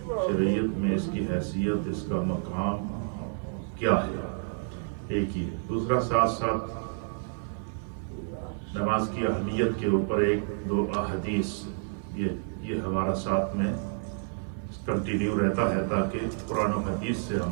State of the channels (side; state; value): left; silent; 58 dB below the other